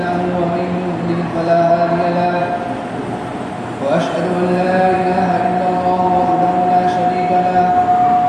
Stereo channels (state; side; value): identical; both; correlation 1.00